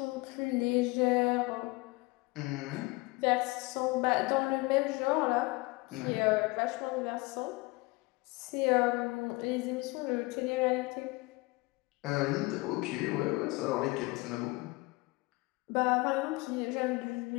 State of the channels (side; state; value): right; quieter; 24.1 dB